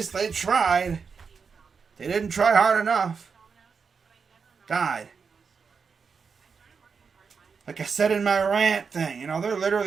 they tried. They didn't try hard enough. God. Like I said in my rant thing, they're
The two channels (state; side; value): quieter; left; 5.6 dB